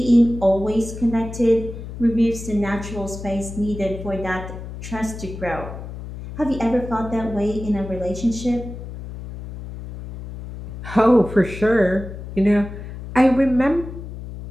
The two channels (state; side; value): noise; left; hum, 11 dB below the sound